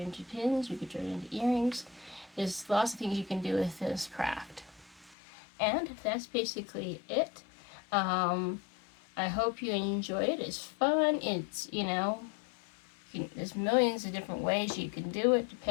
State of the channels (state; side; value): drops out; right; at 5.2 s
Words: into pins. You can turn it into earrings. There's lots of things you can do with this craft. And that's basically it. I hope you enjoyed it. It's fun. It's, there's millions of different ways you can do it